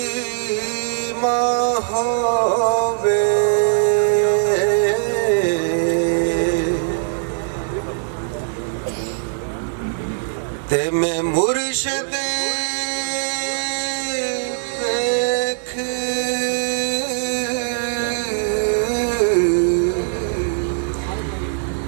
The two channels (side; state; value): left; silent; digital silence